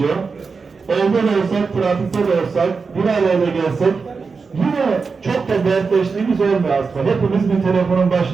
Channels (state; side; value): quieter; left; 4.8 dB